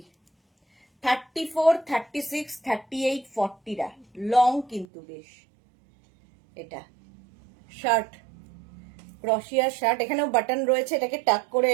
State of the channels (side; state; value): left; drops out; at 4.9 s